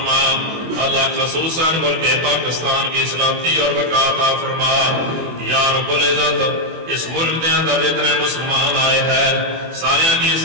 اللہ خصوصاً ملک پاکستان کی سلامتی اور بقا عطا فرما۔ یا رب العزت اس ملک دے اندر جتنے مسلمان آئے ہیں سارے کی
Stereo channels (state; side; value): late; left; 24 ms